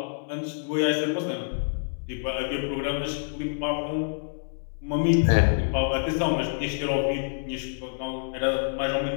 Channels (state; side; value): silent; right; digital silence